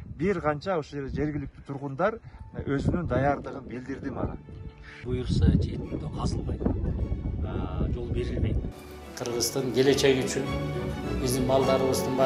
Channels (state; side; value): identical; both; correlation 1.00